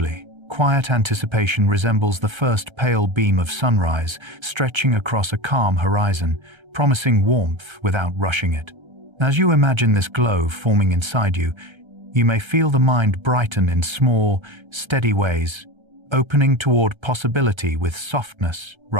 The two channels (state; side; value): late; left; 1.3 ms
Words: quiet anticipation resembles the first pale beam of sunrise stretching across a calm horizon, promising warmth without rushing it. As you imagine this glow forming inside you, you may feel the mind brighten in small, steady ways, opening toward possibility with softness